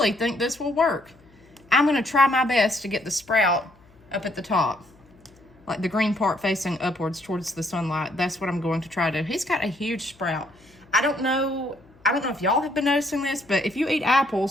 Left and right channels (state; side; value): noise; left; hum, 28 dB below the sound